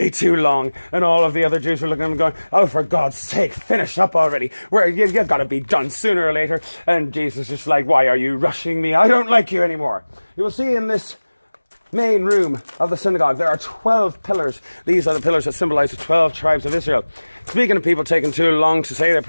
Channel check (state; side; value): inverted; both; correlation -1.00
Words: too long. And all of the other Jews were looking at him going, oh, for God's sake, finish up already. You've got to be done sooner or later. And Jesus is just like, why are you rushing me? I don't like you anymore. You will see in this main room of the synagogue, there are 12 pillars. These are the pillars that symbolize the 12 tribes of Israel. Speaking of people taking too long to say their